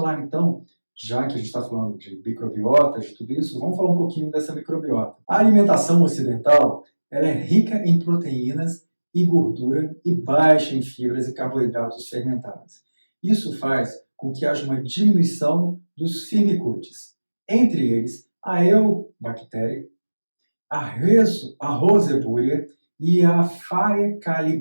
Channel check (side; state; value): both; inverted; correlation -1.00